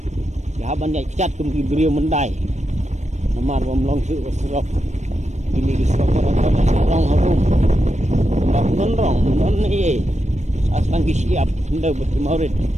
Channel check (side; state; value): left; late; 0.34 ms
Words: Ya ban dai cat kum ki brio mendai. Namar bom long su serok. Ini ki serok rong habum. Ndak non ni. Aslan ki siap hendak bertemarid